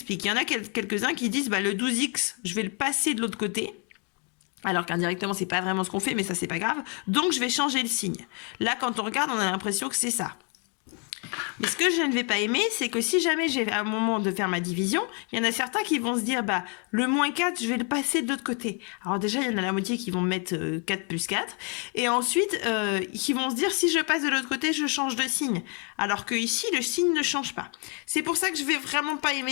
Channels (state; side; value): quieter; right; 37.3 dB